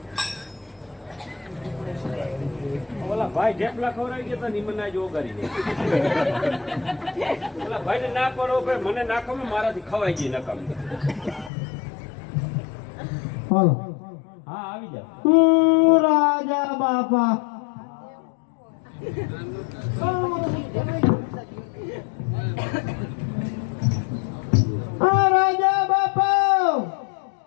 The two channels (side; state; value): right; drops out; at 11.5 s